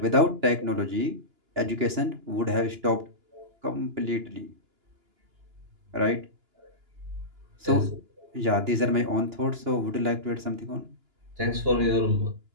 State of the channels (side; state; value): left; late; 2.9 ms